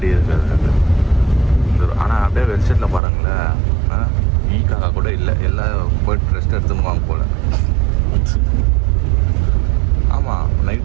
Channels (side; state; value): left; drops out; at 3.0 s